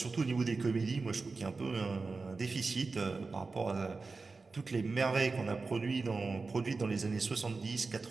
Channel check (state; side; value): quieter; left; 4.0 dB